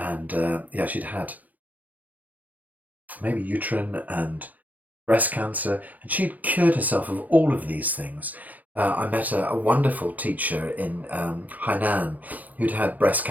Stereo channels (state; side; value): late; left; 0.080 ms